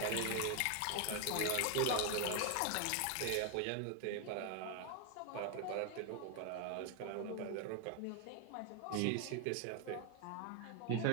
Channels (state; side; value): different; both; correlation 0.01